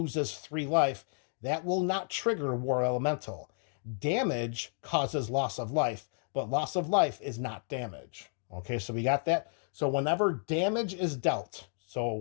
3 life, that will not trigger War Elemental. Damage causes loss of life, but loss of life is not damage. Okay, so we got that. So whenever damage is dealt,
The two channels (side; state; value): right; silent; 56 dB below the other